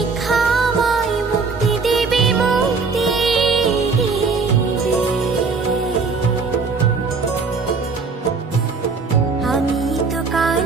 আমায় মুক্তি দেবে, মুক্তি দেবে। আমি তো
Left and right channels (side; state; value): left; quieter; 4.7 dB